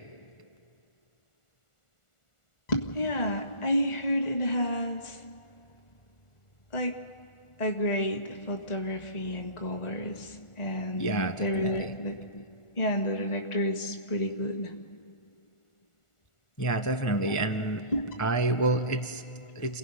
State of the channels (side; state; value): right; late; 1.4 ms